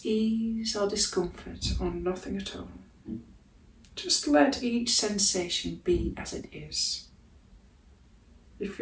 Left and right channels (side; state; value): both; identical; correlation 1.00